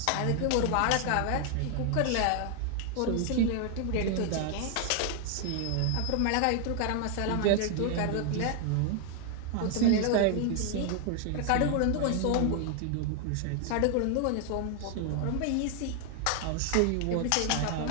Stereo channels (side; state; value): both; different; correlation 0.00